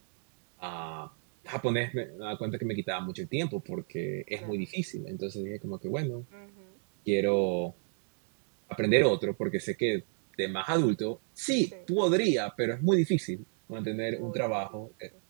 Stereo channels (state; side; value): silent; left; 56 dB below the other